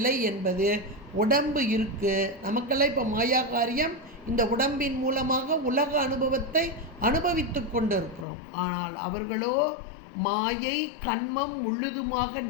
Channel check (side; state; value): right; drops out; at 8.2 s